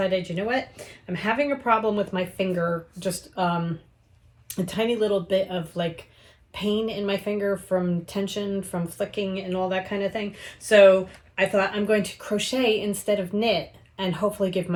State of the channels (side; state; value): both; identical; correlation 1.00